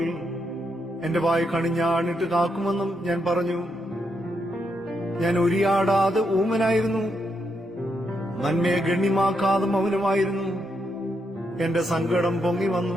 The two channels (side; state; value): both; normal; correlation 0.80